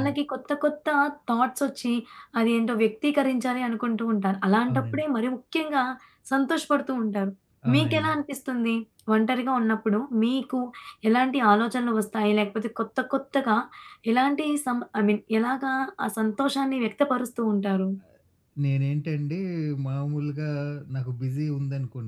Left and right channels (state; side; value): identical; both; correlation 1.00